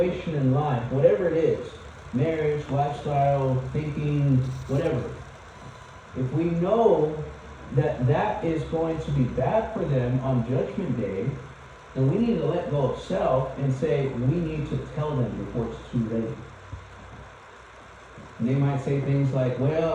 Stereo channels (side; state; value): both; identical; correlation 1.00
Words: in life, whatever it is, marriage, lifestyle, thinking, whatever, if we know that that is going to be bad for them on Judgment Day, then we need to let go of self and say we need to tell them before it's too late. And they might say things like,